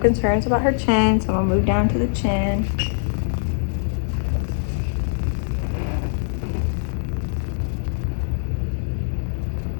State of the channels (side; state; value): right; silent; 64 dB below the other